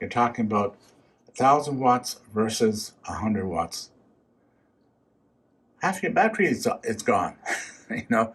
talking about 1,000 watts versus 100 watts. Half your battery is gone,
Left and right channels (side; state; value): both; identical; correlation 1.00